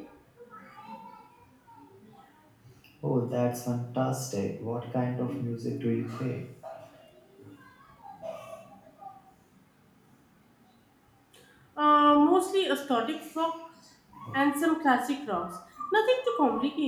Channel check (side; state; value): both; identical; correlation 1.00